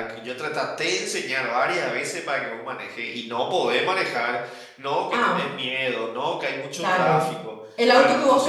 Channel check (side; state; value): both; identical; correlation 1.00